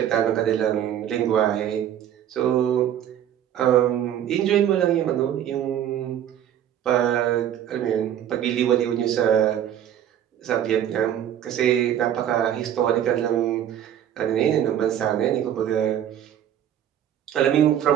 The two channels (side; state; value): left; quieter; 10.5 dB